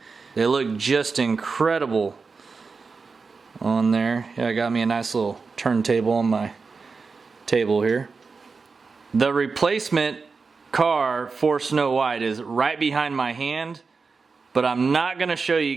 They look just incredible on there. Yeah, I got me a nice little turntable on my table here. The replacement car for Snow White is right behind my hand, but I'm not going to show you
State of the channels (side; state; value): left; quieter; 4.7 dB